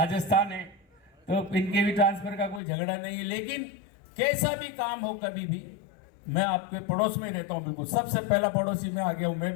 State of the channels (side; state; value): right; drops out; at 2.6 s